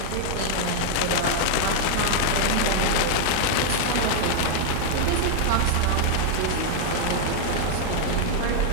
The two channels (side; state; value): both; different; correlation 0.00